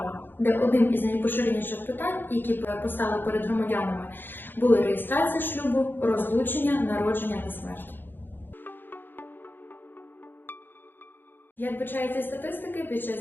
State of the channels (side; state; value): right; late; 0.095 ms